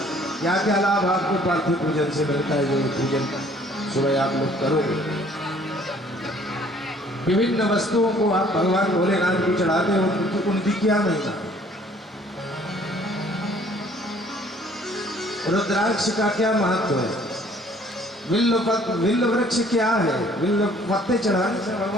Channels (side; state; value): both; normal; correlation 0.58